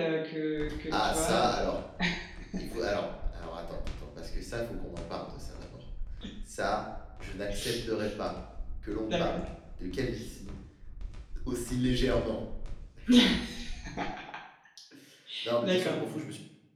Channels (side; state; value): both; identical; correlation 1.00